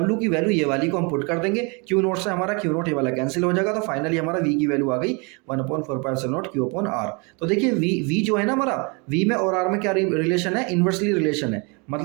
की वैल्यू ये वाली को हम पुट कर देंगे, Q0 से हमारा Q0 ये वाला कैंसिल हो जाएगा, तो फाइनली हमारा V की वैल्यू आ गई 1/4πε0 Q/R। तो देखिए V जो है ना हमारा, V में और R में क्या रिलेशन है, इन्वर्सली रिलेशन है,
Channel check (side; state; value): left; quieter; 31.4 dB